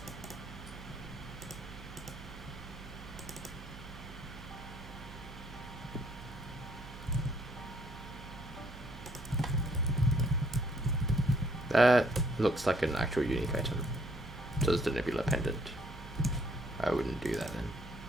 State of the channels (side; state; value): right; noise; hum, 14 dB below the sound